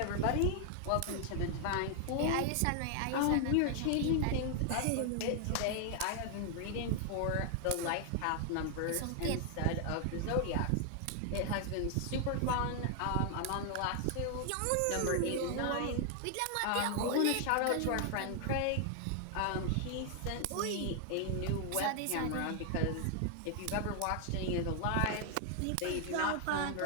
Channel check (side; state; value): both; different; correlation 0.00